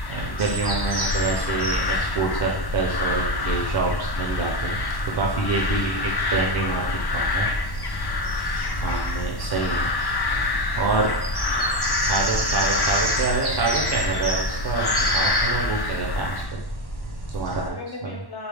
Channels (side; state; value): right; late; 1.1 ms